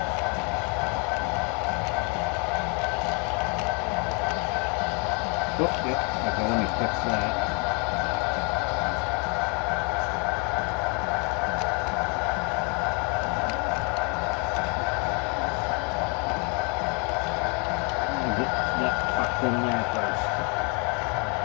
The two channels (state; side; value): quieter; right; 34.1 dB